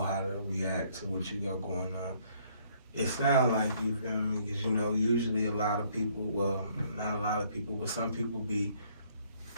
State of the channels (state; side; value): inverted; both; correlation -0.65